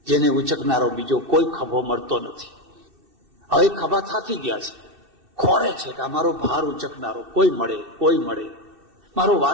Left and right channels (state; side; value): late; left; 2.6 ms